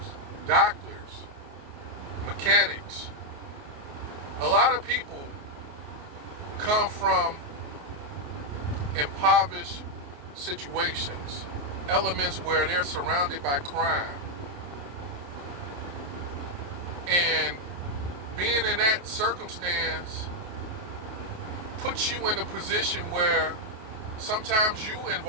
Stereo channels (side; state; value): left; late; 28 ms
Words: doctors, mechanics. A lot of people come from impoverished situations, elements where they're surrounded by crime. And being in that circumstance puts you in a position where sometimes you